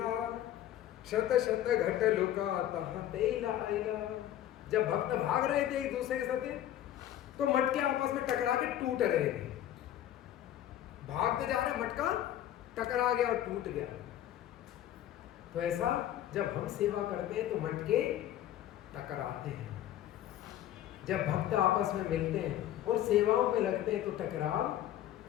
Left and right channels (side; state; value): right; quieter; 12.1 dB